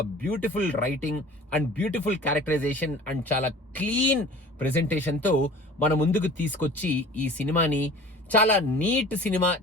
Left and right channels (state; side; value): normal; both; correlation 0.43